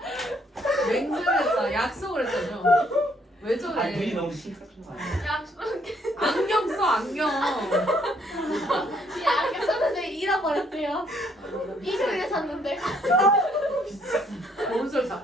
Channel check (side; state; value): both; normal; correlation 0.67